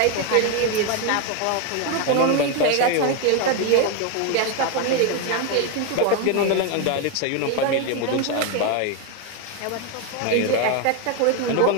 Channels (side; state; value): both; different; correlation 0.02